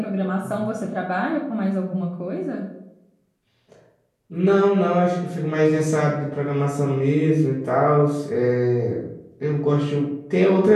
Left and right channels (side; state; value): both; identical; correlation 1.00